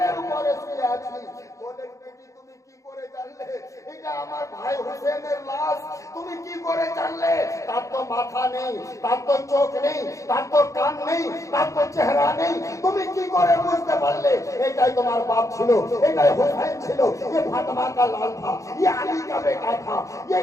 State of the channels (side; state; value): right; late; 0.15 ms